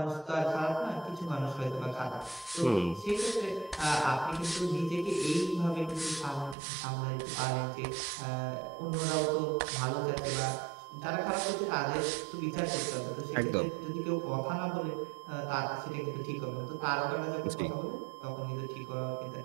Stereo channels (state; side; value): drops out; left; at 6.6 s